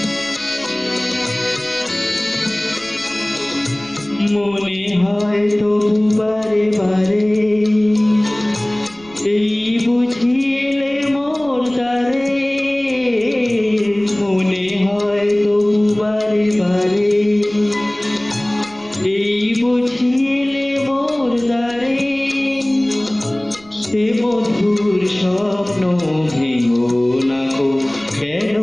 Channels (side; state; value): right; noise; rumble, 26 dB below the sound